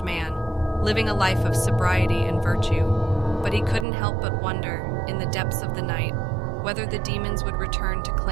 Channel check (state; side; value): drops out; left; at 3.9 s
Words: man, living a life of sobriety and virtue. But he couldn't help but wonder, in the depths of the night, whether the demons would return to